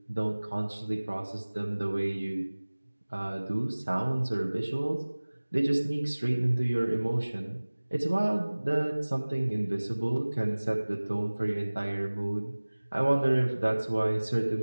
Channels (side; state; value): both; inverted; correlation -1.00